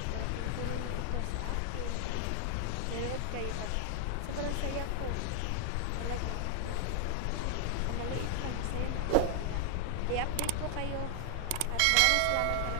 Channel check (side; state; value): both; different; correlation 0.00